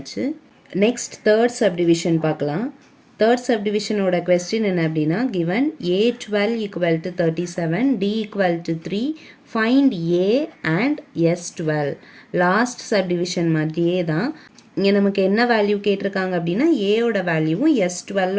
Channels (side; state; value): both; identical; correlation 1.00